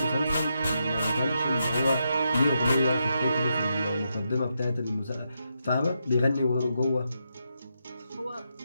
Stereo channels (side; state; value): both; inverted; correlation -0.83